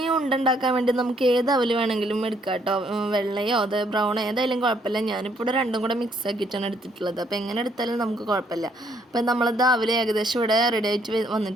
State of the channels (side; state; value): both; normal; correlation 0.68